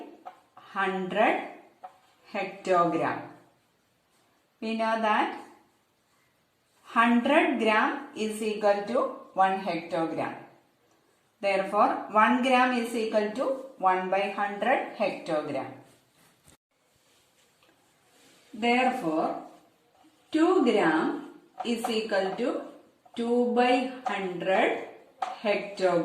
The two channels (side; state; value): both; identical; correlation 1.00